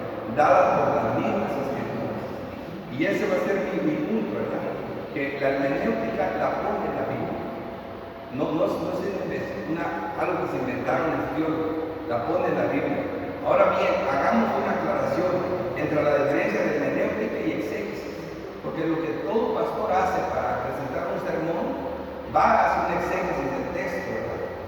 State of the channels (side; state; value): both; identical; correlation 1.00